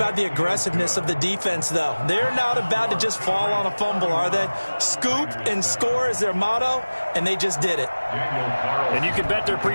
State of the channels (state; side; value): inverted; both; correlation -1.00